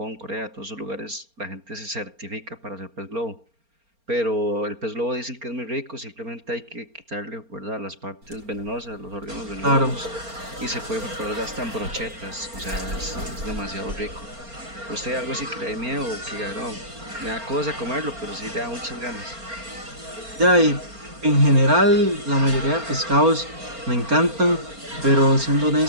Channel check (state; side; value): late; left; 4.3 ms